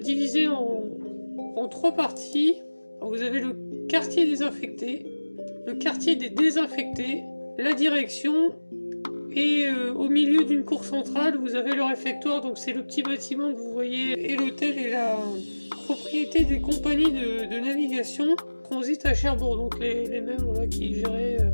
en 3 parties. Alors, vous avez le quartier désinfecté, le quartier des désinfectés, la direction, et au milieu d'une cour centrale, vous avez le réfectoire, donc c'est le petit bâtiment que vous voyez, et l'hôtel est la propriété des compagnies de navigation transit à Cherbourg, donc les mêmes qui géraient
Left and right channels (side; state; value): both; inverted; correlation -1.00